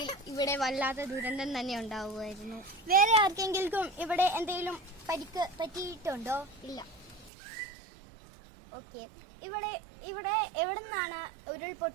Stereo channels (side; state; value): left; drops out; at 7.3 s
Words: ഇവിടെ വല്ലാത്ത ദുരന്തം തന്നെ ഉണ്ടാവുമായിരുന്നു. വേറെ ആർക്കെങ്കിലും ഇവിടെ എന്തെങ്കിലും പരിക്ക് പറ്റിയിട്ടുണ്ടോ? ഇല്ല. ഓക്കെ. ഇവിടെ എവിടെ നിന്നാണ്